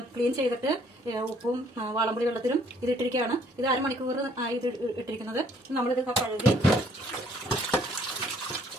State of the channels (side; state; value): both; normal; correlation 0.62